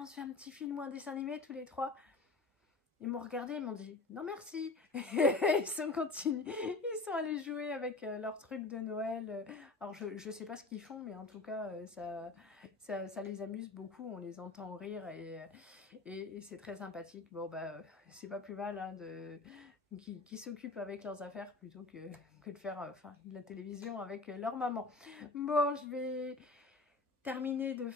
se fait un petit film ou un dessin animé tous les trois. Ils m'ont regardé, ils m'ont dit non merci. Ils sont allés jouer avec leurs trucs de Noël. Alors je sais pas ce qu'ils font, mais en tout cas ça les amuse beaucoup. On les entend rire et c'est très sympathique. Bon bah c'est pas plus mal hein, qui s'occupent avec leurs affaires plutôt que de faire la télévision avec leur maman. Bon, je vais terminer de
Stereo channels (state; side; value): quieter; right; 3.5 dB